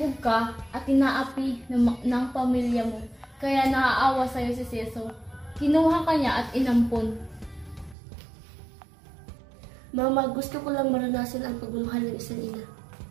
ka at inaapi ng pamilya mo, kaya naaawa sa'yo si Ceso. Kinuha ka niya at inampon. Mama, gusto ko lang maranasan ang pagmamahal ng isang ina.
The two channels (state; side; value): drops out; left; at 8.0 s